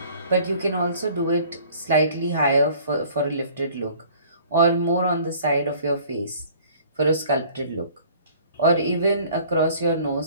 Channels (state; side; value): inverted; both; correlation -0.52